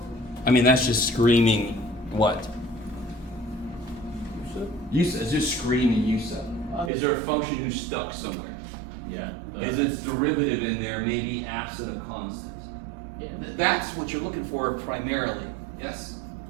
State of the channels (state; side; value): drops out; left; at 6.9 s